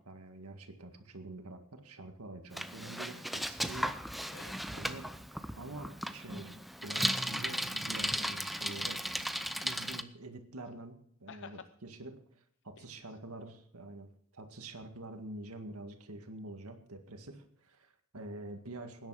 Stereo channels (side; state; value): both; normal; correlation 0.82